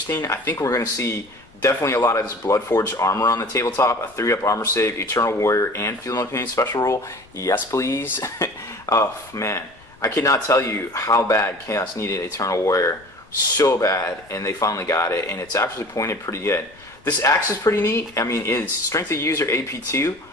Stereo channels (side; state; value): left; noise; rumble, 28 dB below the sound